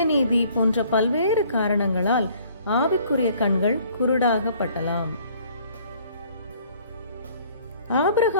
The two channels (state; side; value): inverted; both; correlation -0.57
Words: போன்ற பல்வேறு காரணங்களால் ஆவிக்குரிய கண்கள் குருடாகப்படலாம்.